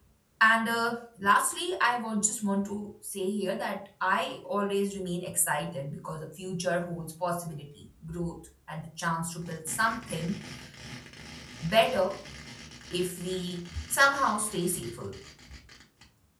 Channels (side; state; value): both; identical; correlation 1.00